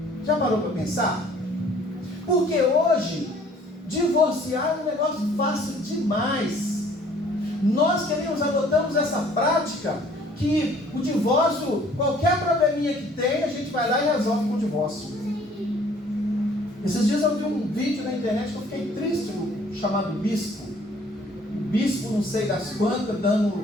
Já parou para pensar? Porque hoje, divorciar é um negócio fácil demais. Nós adotamos essa prática que o divórcio, qualquer probleminha que tem, a gente vai lá e resolve com o divórcio. Esses dias eu vi um vídeo na internet que eu fiquei triste, chamado Bispo. O bispo, não sei das quantas,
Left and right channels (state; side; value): normal; both; correlation 0.56